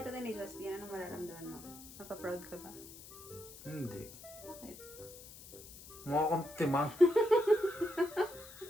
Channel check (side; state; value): left; noise; hiss, 16 dB below the sound